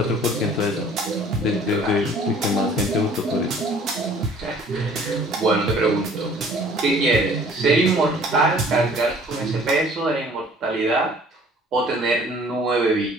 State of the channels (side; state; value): both; normal; correlation 0.53